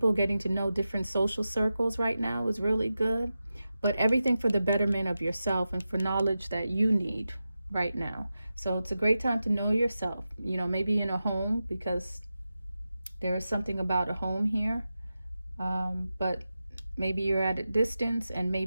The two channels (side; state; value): both; inverted; correlation -0.92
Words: getting to know different social circles right now is really good. But everything for the betterment of yourself and for knowledge that you need right now. So it's a great time to know yourself, you know, maybe in a home, because there is something about a home here. But maybe you're at a distance, and